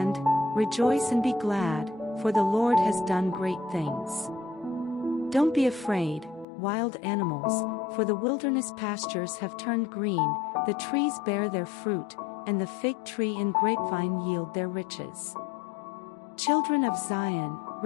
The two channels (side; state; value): right; drops out; at 6.5 s